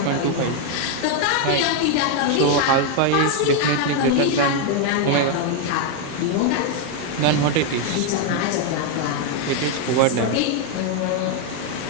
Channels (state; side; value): different; both; correlation 0.01